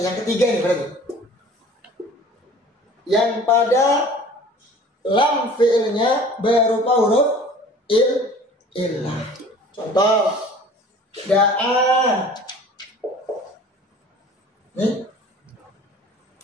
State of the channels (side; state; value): both; normal; correlation 0.46